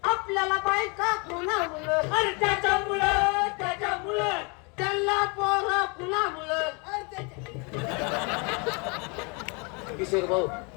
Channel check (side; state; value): right; quieter; 31.8 dB